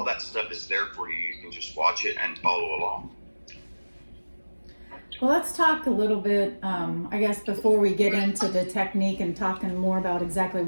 that stuff is there for you. You can just watch it and follow along. Well, let's talk a little bit, I guess, before we get into the technique and talking more about exactly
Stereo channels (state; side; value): inverted; both; correlation -1.00